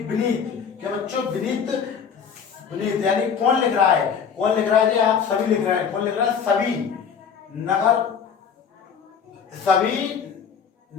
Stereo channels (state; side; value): quieter; right; 6.9 dB